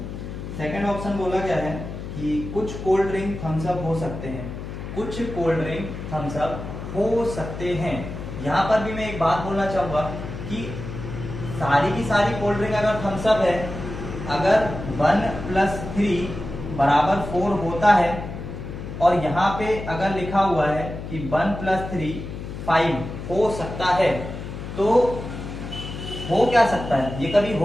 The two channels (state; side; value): noise; left; hum, 8 dB below the sound